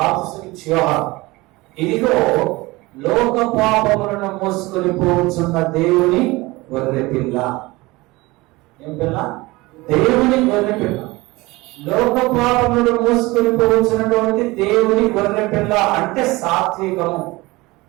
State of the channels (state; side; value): quieter; left; 21.7 dB